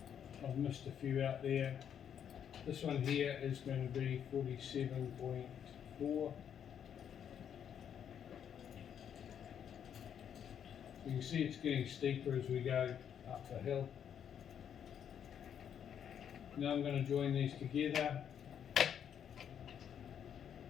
I've missed a few out there. This one here is going to be 47.4. You can see it's getting steeper as we go up the hill. Now I'm going to join these together.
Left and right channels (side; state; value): right; quieter; 8.7 dB